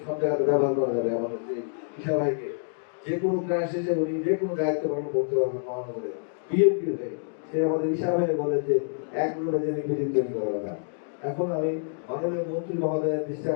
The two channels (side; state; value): right; silent; digital silence